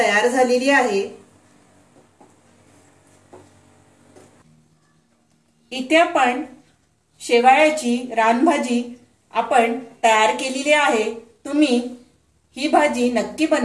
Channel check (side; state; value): both; identical; correlation 1.00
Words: झालेली आहे। इथे आपण शेवाळ्याची रानभाजी आपण तयार केलेली आहे। तुम्ही ही भाजी नक्की